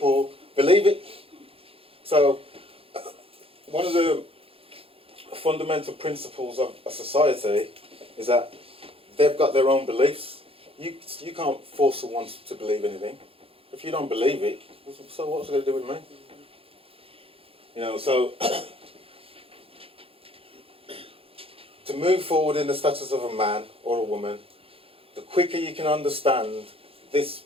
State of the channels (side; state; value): left; late; 0.27 ms